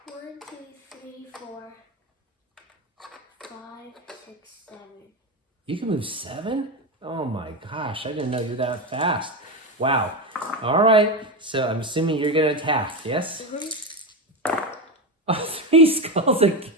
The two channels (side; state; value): both; normal; correlation 0.15